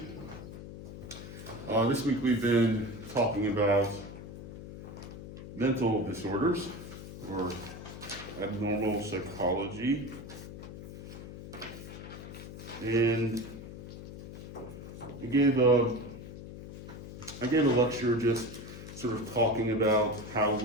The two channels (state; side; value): noise; left; hum, 12 dB below the sound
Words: week we've been talking about mental disorders or abnormal psychology, and I gave a lecture just sort of talking about how